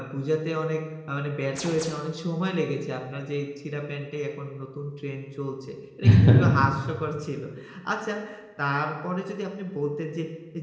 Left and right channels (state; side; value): identical; both; correlation 1.00